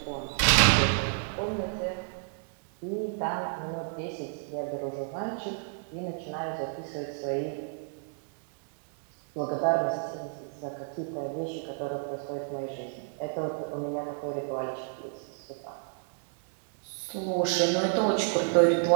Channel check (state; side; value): silent; left; 57 dB below the other